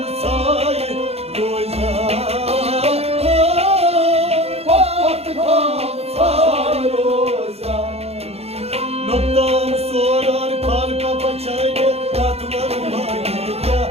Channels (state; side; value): late; left; 0.30 ms